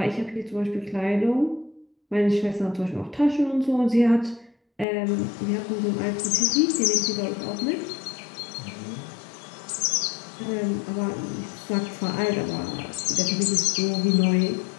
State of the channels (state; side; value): drops out; right; at 4.9 s